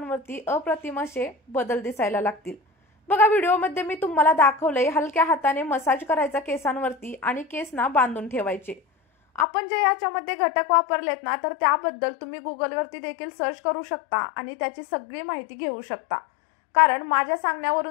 अप्रतिम असे बदल दिसायला लागतील। बघा, व्हिडिओमध्ये मी तुम्हाला दाखवलंय हलक्या हाताने मसाज करायचा केसांवरती आणि केसना बांधून ठेवायचे। आपण जे याच्यामध्ये घटक वापरलेत ना, तर त्याबद्दल तुम्ही गुगलवरती देखील सर्च करू शकता आणि त्याची सगळी माहिती घेऊ शकता. कारण माझ्या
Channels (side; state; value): right; drops out; at 9.5 s